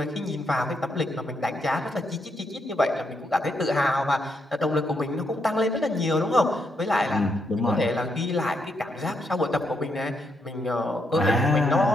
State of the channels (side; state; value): both; normal; correlation 0.79